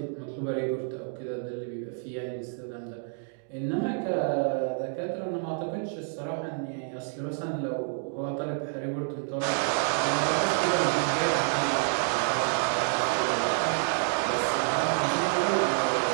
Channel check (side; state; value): left; silent; 59 dB below the other